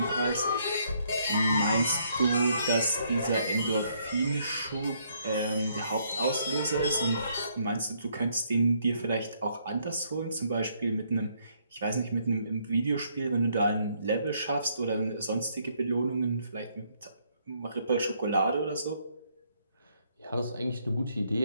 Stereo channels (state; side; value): inverted; both; correlation -0.70